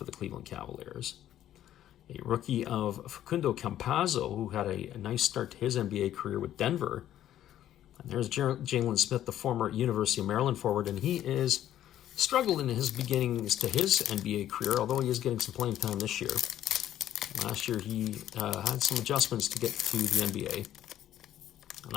the Cleveland Cavaliers. A rookie of Facundo Campazzo, who had a nice start to his NBA career with Denver. And there's Jalen Smith, the former University of Maryland forward, and he is struggling in his beginnings to his NBA career, although he is getting some playing time this year. Last year he had some adjustments to get to the NBA.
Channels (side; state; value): right; quieter; 11.9 dB